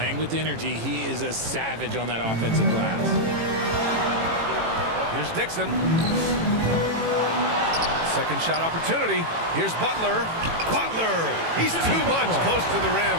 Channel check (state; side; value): late; left; 18 ms